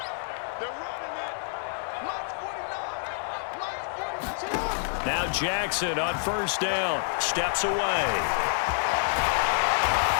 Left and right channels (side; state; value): right; silent; 60 dB below the other